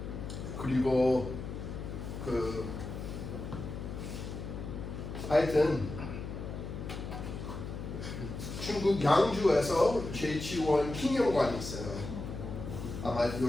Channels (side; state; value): left; noise; hum, 7 dB below the sound